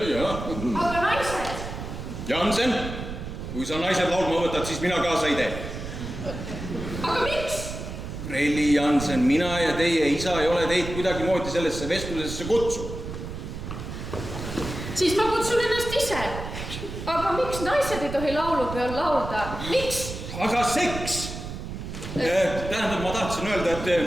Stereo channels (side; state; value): right; noise; rumble, 8 dB below the sound